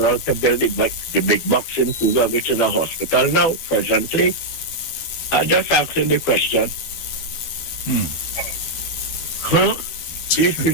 to build the big box in Cougar, which is a hospital now, presently. I'm just asking the question. These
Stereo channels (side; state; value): right; late; 12 ms